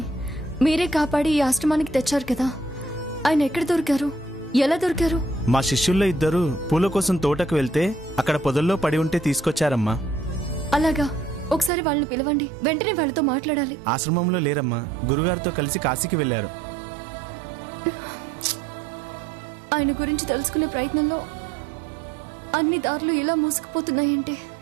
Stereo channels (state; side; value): drops out; left; at 11.7 s